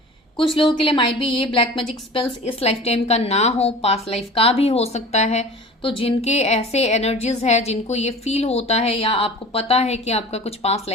कुछ लोगों के लिए माइट भी ये ब्लैक मैजिक स्पेल्स इस लाइफ टाइम का ना हो, पास्ट लाइफ का भी हो सकता है। तो जिनके ऐसे एनर्जीज है, जिनको ये फील होता है, या आपको पता है कि आपका कुछ पास्ट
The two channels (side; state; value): both; normal; correlation 0.39